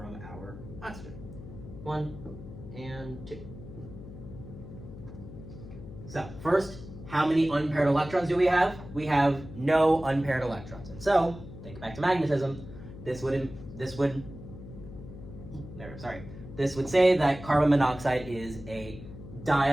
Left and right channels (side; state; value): left; noise; hum, 14 dB below the sound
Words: our oxygen. 1 and 2. So first, how many unpaired electrons do we have? We have no unpaired electrons. And so, think back to magnetism, this would say that carbon monoxide is a